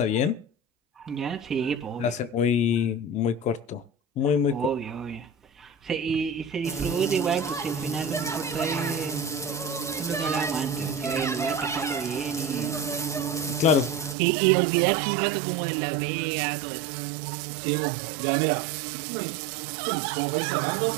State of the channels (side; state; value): left; drops out; at 14.2 s